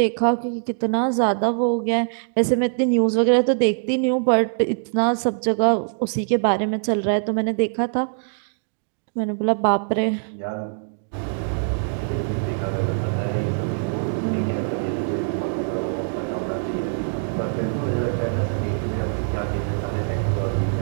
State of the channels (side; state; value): left; silent; digital silence